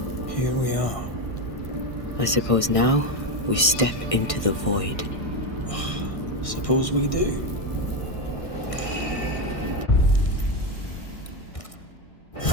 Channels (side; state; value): right; late; 1.6 ms